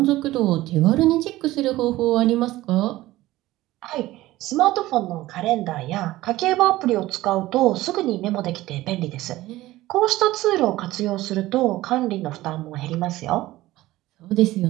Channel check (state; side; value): quieter; left; 16.9 dB